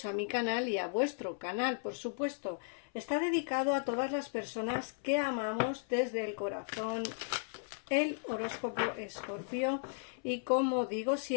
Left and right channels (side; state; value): right; silent; 54 dB below the other